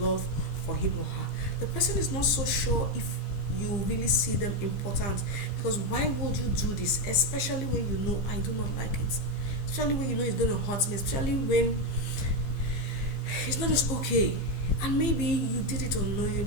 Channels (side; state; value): right; late; 15 ms